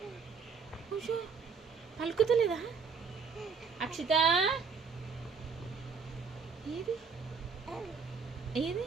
పలుకుతలేదా? అక్షిత ఏది ఏది?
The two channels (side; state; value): left; quieter; 5.5 dB